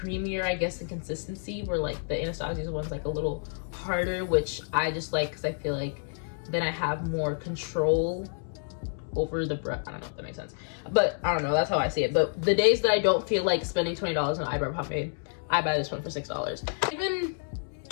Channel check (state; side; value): silent; right; digital silence